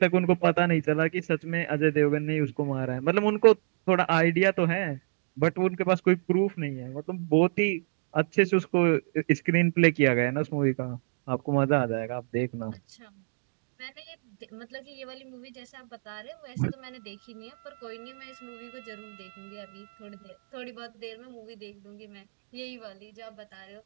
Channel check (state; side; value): silent; left; digital silence